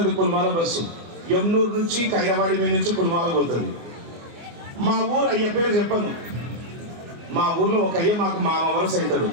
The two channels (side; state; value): left; late; 24 ms